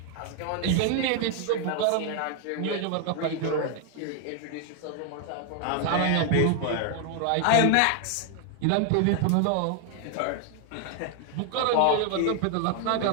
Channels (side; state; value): both; different; correlation 0.00